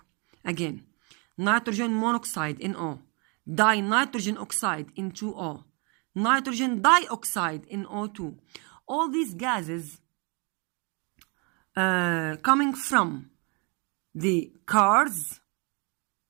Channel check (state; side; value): quieter; left; 32.9 dB